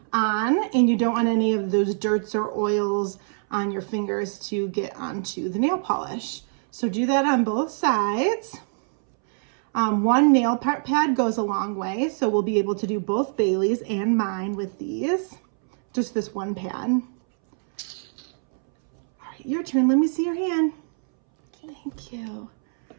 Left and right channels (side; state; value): left; silent; 62 dB below the other